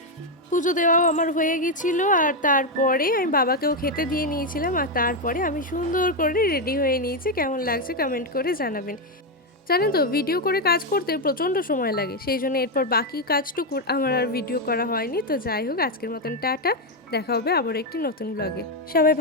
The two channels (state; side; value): normal; both; correlation 0.05